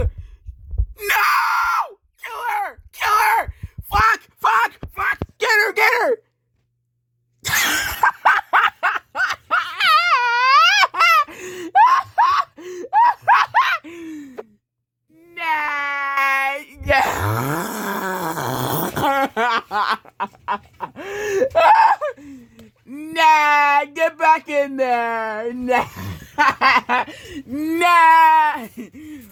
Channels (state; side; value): identical; both; correlation 1.00